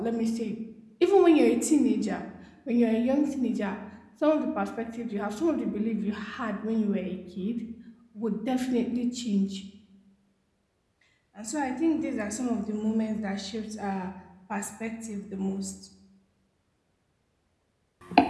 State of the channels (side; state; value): both; identical; correlation 1.00